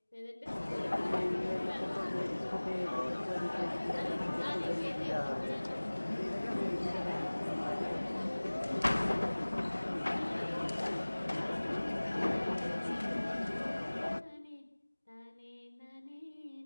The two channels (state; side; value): inverted; both; correlation -1.00